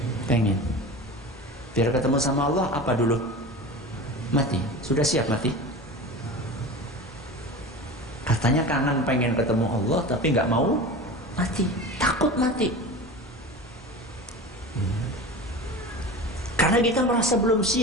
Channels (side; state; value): both; normal; correlation 0.32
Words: Pengen. Biar ketemu sama Allah apa dulu? Mati. Sudah siap mati? Katanya kangen pengen ketemu Allah tapi nggak mau mati, takut mati. Karena kita merasa belum